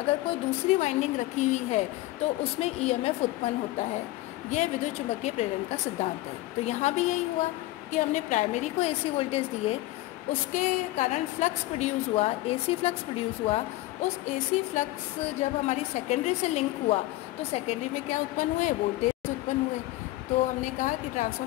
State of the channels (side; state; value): right; quieter; 17.8 dB